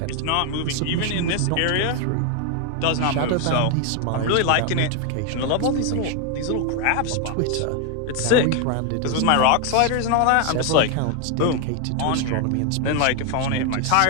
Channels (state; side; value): different; both; correlation 0.01